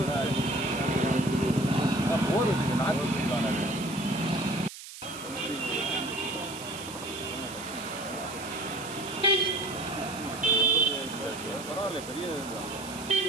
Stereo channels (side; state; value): right; noise; hiss, 13 dB below the sound